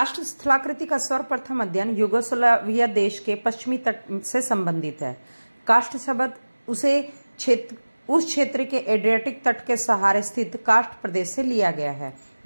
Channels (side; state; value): both; inverted; correlation -1.00